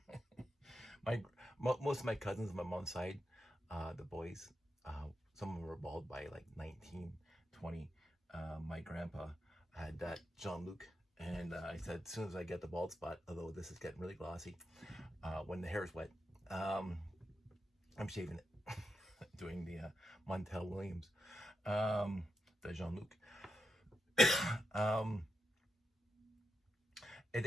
Most of my cousins on my mom's side, the boys, some of them were bald by like 19, 20. My grandpa had that Jean-Luc, and I said as soon as I get the bald spot, although this is getting really glossy, when the hair is wet, I'm shaving it, doing the Montel Williams, the Jean-Luc.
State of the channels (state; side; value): normal; both; correlation 0.86